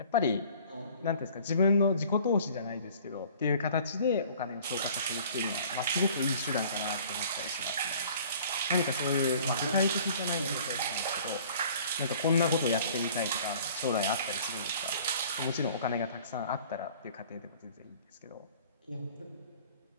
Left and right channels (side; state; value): both; inverted; correlation -0.51